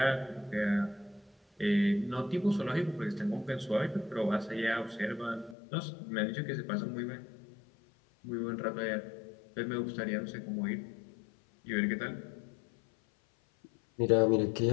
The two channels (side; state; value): right; drops out; at 5.6 s